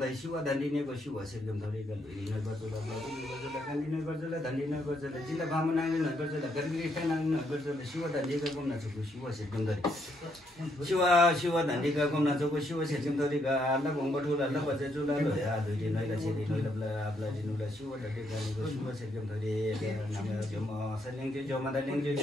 siêu đàn đi này có siêu sẽ ngâm thôi đi cái lui này bật là đàn đi này bật là đàn đi này bật là chỉ là ba mươi năm này bật là cái cái năng bật là siêu đàn đi cái gồm na cho có siêu sẽ ngâm thôi siêu đàn đi cái gồm na cho có siêu sẽ ngâm thôi đi cái là gồm bật là bật cho là rồi lui đi này là chỉ đi nói là đi nói là siêu đàn đi cái siêu sẽ ngâm thôi đi nằm là chỗ mà sẽ lên chỗ mà đã lên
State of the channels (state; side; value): normal; both; correlation 0.74